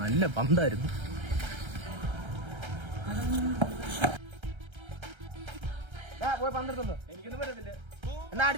പന്തായിരുന്നു പോയി പന്തെടുത്തുണ്ടോ എനിക്കൊന്നും പറ്റത്തില്ല എന്നാ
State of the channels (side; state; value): left; late; 1.3 ms